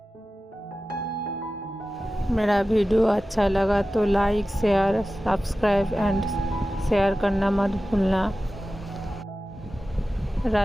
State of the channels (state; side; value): normal; both; correlation 0.95